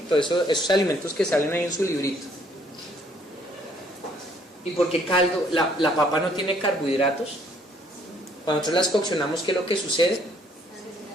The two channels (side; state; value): both; normal; correlation 0.64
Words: Todos esos alimentos que salen ahí en su librito. ¿Y por qué caldo? La papa no tiene carbohidratos. Cuando nosotros las coccionamos, ¿qué es lo que sucede?